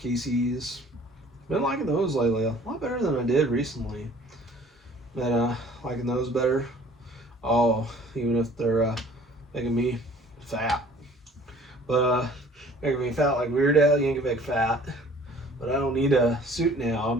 Casey's. Been liking those lately, a lot better than I did recently. Been liking those better. Oh, even if they're making me fat. But making me fat like Weird Al Yankovic fat. But I don't need a suit now.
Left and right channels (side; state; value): both; normal; correlation 0.52